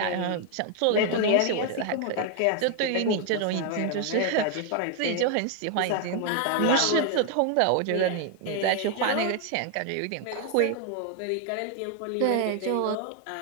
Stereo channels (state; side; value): different; both; correlation 0.00